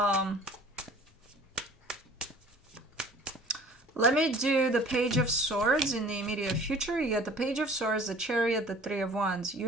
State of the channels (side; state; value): both; normal; correlation 0.49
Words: Let me do the Page of Swords in the immediate future. You get the Page of Swords, the Chariot, the Three of Wands.